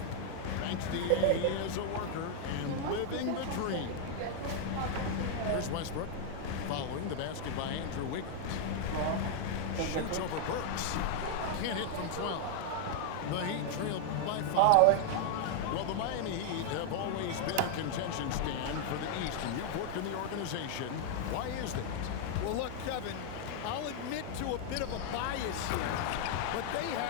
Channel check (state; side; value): different; both; correlation 0.00